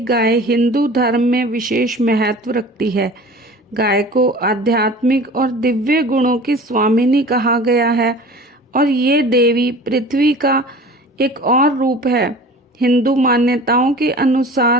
हिंदू धर्म में विशेष महत्व रखती है। गाय को आध्यात्मिक और दिव्य गुणों की स्वामिनी कहा गया है और ये देवी पृथ्वी का एक और रूप है। हिंदू मान्यताओं के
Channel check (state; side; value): normal; both; correlation 0.41